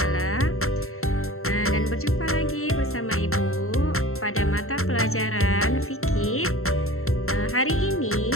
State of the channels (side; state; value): right; late; 0.62 ms